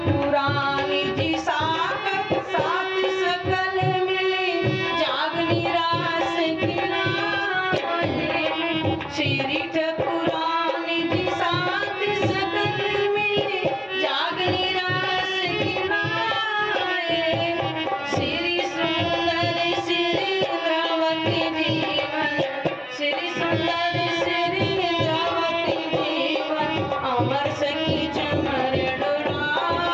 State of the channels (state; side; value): identical; both; correlation 1.00